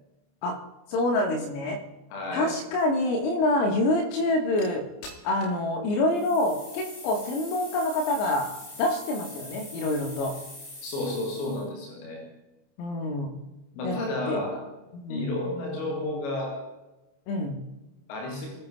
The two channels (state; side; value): late; right; 29 ms